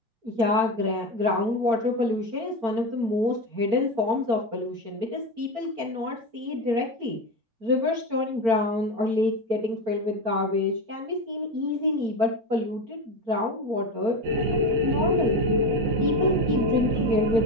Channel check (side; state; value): left; late; 4.4 ms